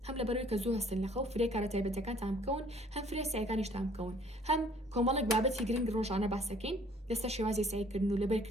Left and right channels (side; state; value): both; normal; correlation 0.57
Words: هەم لەبەرەوەی کە زوو هەستن لەخەو فرێ کارە تایبەتەکانتان بکەون هەم فرێ سایەکانیشتان بکەون هەم کۆمەڵێک بابەتی گرنگ ڕۆژانە باسەکەین لەسەر شێوازی سایکردن و